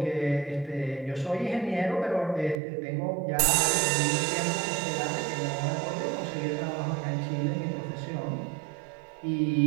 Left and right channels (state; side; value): drops out; left; at 2.6 s